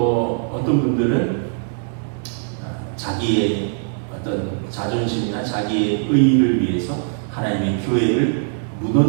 어떤 분들은 자기의 어떤 자존심이나 자기의 의의를 위해서 하나님의 교회를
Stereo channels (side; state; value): left; silent; digital silence